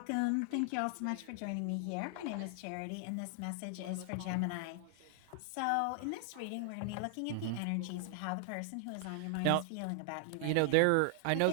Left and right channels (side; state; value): both; different; correlation 0.00